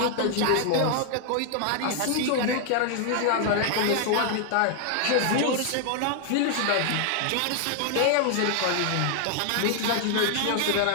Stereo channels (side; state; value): both; different; correlation 0.00